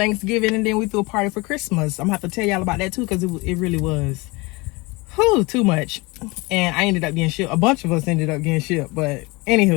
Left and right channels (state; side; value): quieter; right; 24.9 dB